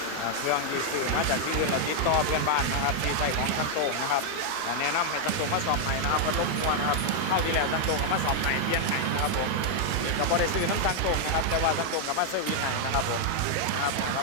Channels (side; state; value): both; different; correlation 0.00